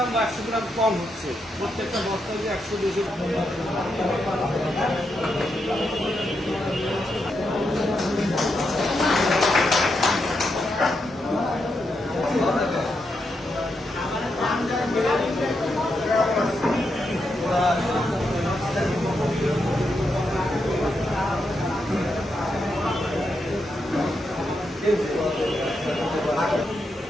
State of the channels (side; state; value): both; normal; correlation 0.83